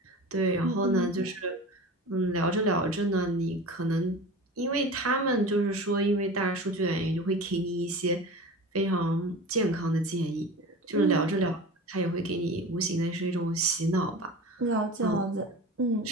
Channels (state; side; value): normal; both; correlation 0.34